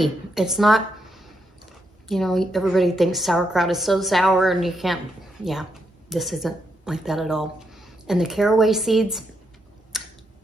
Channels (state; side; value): normal; both; correlation 0.80